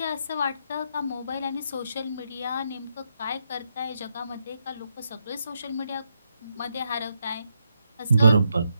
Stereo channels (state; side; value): inverted; both; correlation -0.80